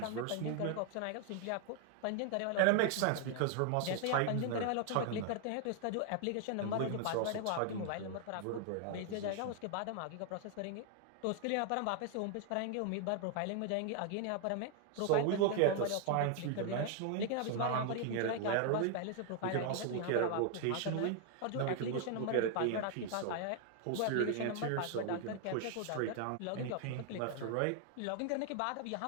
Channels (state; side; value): different; both; correlation 0.00